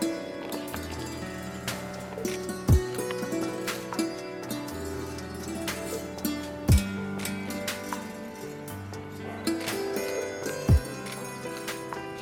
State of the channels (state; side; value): identical; both; correlation 1.00